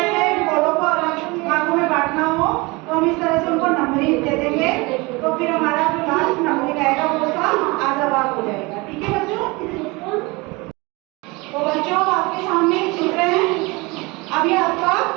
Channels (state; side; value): quieter; left; 25.0 dB